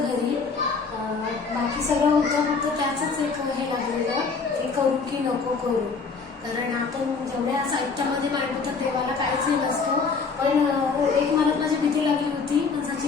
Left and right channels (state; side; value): quieter; right; 4.8 dB